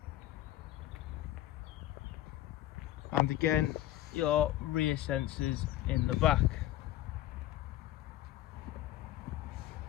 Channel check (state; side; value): quieter; right; 14.1 dB